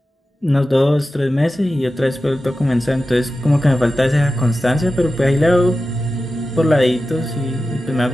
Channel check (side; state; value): both; normal; correlation 0.93